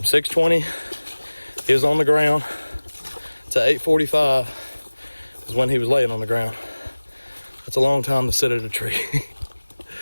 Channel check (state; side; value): inverted; both; correlation -1.00